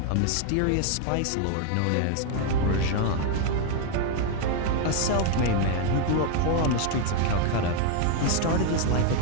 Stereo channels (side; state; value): both; different; correlation 0.00